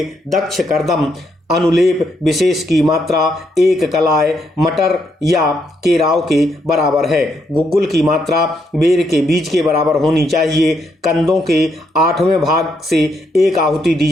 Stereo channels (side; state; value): both; normal; correlation 0.76